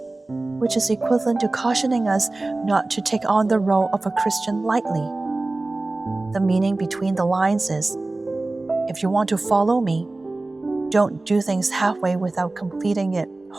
which is equivalent to cautioning us not to take on the role of a Christian lightly. The meaning between the lines is, if you want to follow me, don't do things halfway without completing it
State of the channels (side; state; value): left; quieter; 3.1 dB